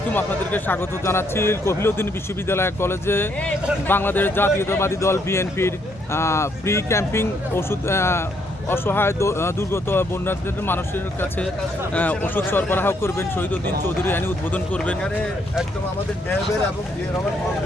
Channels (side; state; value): both; normal; correlation 0.72